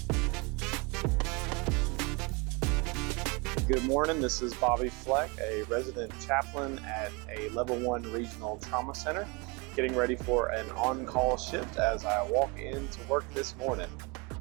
Good morning, this is Bobby Fleck, a resident chaplain at a level 1 regional trauma center, getting ready for an on-call shift as I walk into work this morning.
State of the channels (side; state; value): left; quieter; 28.6 dB